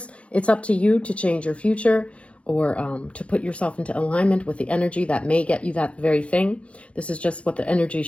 it's up to you to change your future or to put yourself into alignment with the energy that may get you that very thing. This is just what the energy is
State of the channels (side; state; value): right; late; 0.062 ms